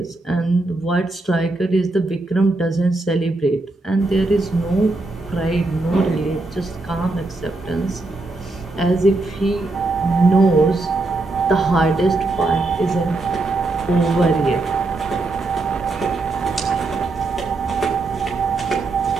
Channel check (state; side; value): quieter; left; 3.2 dB